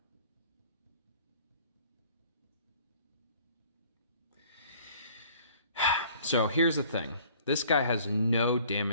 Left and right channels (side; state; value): both; inverted; correlation -0.54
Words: So here's the thing. This guy has no